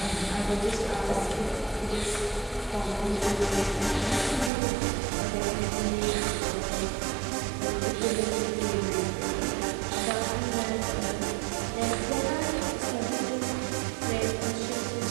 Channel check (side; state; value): left; drops out; at 4.5 s